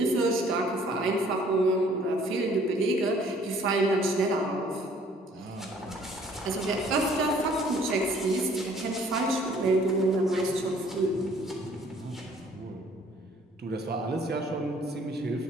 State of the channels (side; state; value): both; normal; correlation 0.57